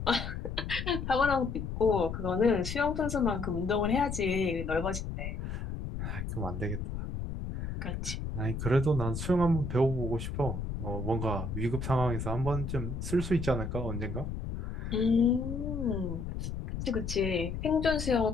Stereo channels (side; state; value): left; noise; rumble, 5 dB below the sound